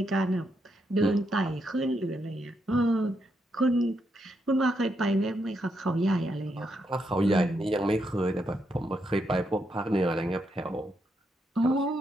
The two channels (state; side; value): normal; both; correlation 0.80